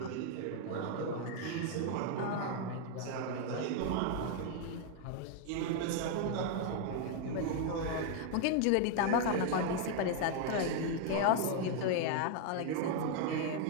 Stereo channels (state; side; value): different; both; correlation 0.00